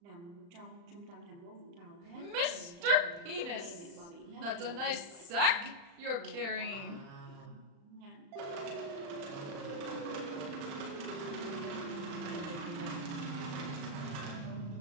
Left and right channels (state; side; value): late; left; 35 ms